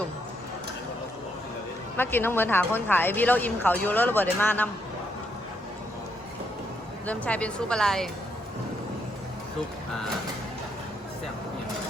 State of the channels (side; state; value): both; normal; correlation 0.76